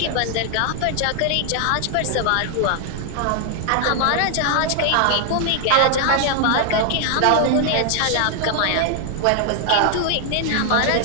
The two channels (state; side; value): different; both; correlation 0.00